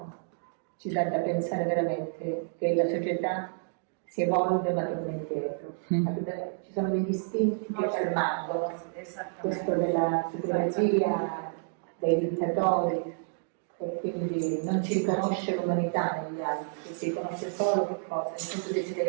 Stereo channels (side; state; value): left; silent; digital silence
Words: ci dà da pensare veramente che la società si evolve ma torna indietro. Ci sono degli istinti che ci rimangono, questo della supremazia, dei dittatori, e quindi non ci riconosce l'umanità negli altri, si riconosce solo che cosa? Il nostro